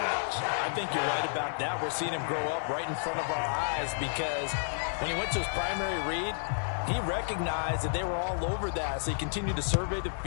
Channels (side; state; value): right; silent; digital silence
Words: I think you're right about that. We're seeing him grow up right in front of our eyes because when he went to his primary read, he recognized that they were all over that. So he continued to survey the